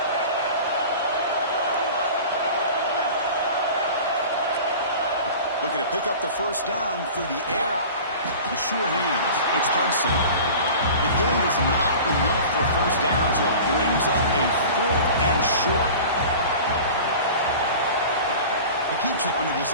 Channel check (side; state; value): both; inverted; correlation -0.38